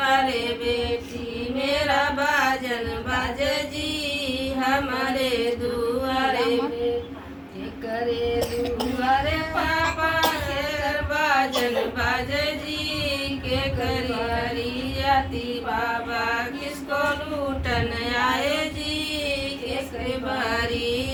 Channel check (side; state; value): both; identical; correlation 1.00